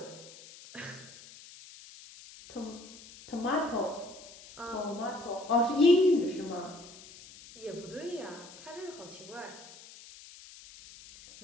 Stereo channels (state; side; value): noise; left; hiss, 18 dB below the sound